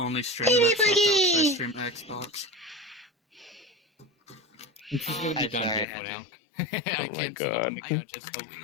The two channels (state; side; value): drops out; right; at 5.9 s